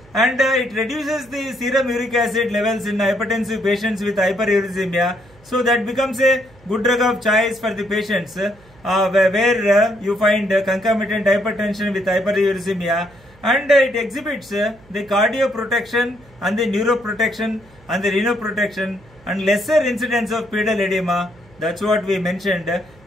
and it reduces the serum uric acid levels in hypertensive patients with hyperuricemia. So that becomes a good drug of choice for the patients where you find concomitant hypertension with hyperuricemia, and it exhibits the cardioprotection and the neuroprotection and the renoprotection and lesser incidence of pedal edema. That's what we mentioned,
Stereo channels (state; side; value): noise; right; hum, 27 dB below the sound